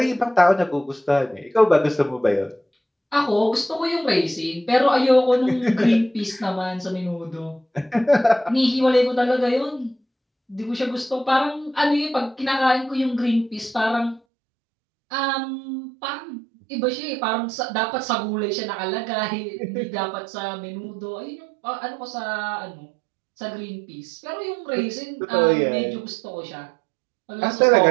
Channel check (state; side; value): drops out; left; at 14.2 s